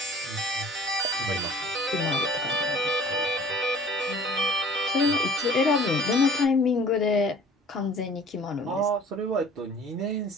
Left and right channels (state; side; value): normal; both; correlation 0.49